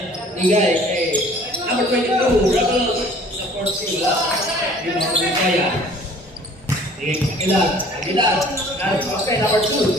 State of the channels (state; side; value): normal; both; correlation 0.51